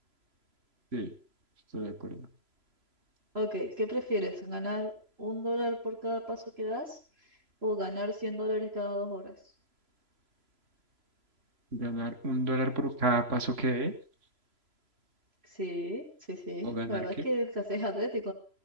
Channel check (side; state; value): left; late; 3.0 ms